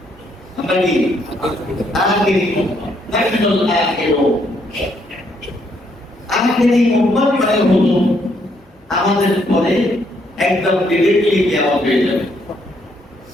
আমরা কি আখিরি উম্মত, নাহনুল আখিরুন। আখিরি উম্মত মানে হলো আমাদের পরে একদম ডিরেক্টলি কিয়ামত হয়ে যাবে,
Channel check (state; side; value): normal; both; correlation 0.72